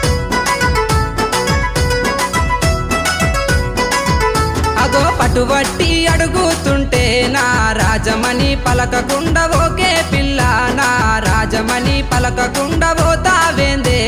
పట్టుబట్టి అడుగుతుంటే నా రాజమణి పలకకుండా ఓకే పిల్ల నా రాజమణి పలకకుండా పోతావేందే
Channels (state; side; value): identical; both; correlation 1.00